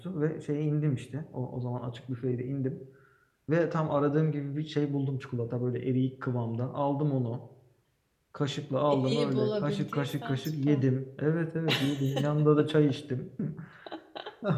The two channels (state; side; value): identical; both; correlation 1.00